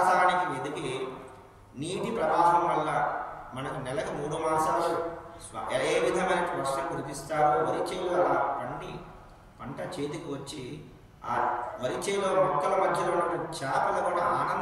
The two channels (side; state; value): both; identical; correlation 1.00